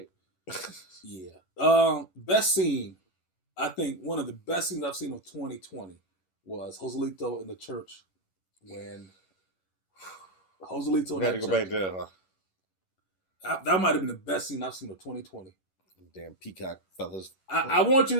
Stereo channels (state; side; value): late; right; 11 ms